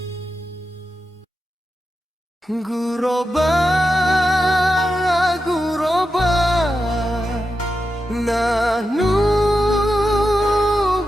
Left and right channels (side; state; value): both; normal; correlation 0.89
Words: Guroba, guroba, nahnu